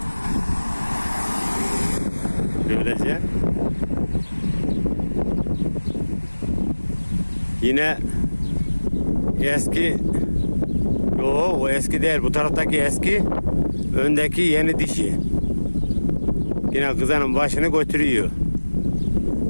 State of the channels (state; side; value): inverted; both; correlation -1.00